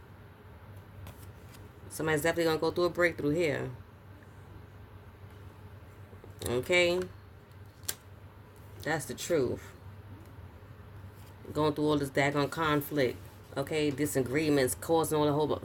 Somebody's definitely going to go through a breakthrough here. Okay? That's the truth. Going through all this daggone conflict, okay? Disagreements, causing all a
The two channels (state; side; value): identical; both; correlation 1.00